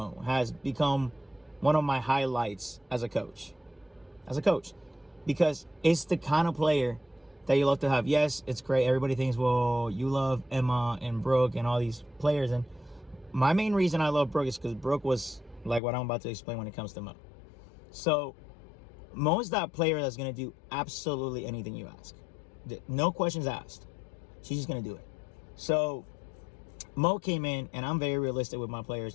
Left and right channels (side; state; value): right; drops out; at 15.8 s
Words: has become one of my highlights as a coach, because it's the kind of player that you love to have. Yes, it's great. Everybody thinks, well, you love Emma and Brooke and all these players. And my main reason I love Brooke is because Brooke was like what I'm about to explain when it comes to Mo. So Mo is that player that's going to do absolutely anything you ask. No questions asked. She's just going to do it. So Mo came in, and I'm very realistic with my